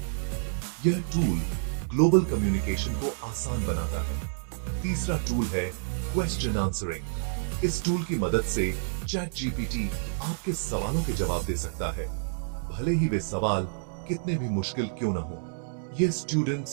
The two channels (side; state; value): left; silent; digital silence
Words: यह टूल ग्लोबल कम्युनिकेशन को आसान बनाता है। तीसरा टूल है क्वेश्चन आंसरिंग। इस टूल की मदद से चैट जीपीटी आपके सवालों के जवाब दे सकता है, भले ही वे सवाल कितने भी मुश्किल क्यों न हो। यह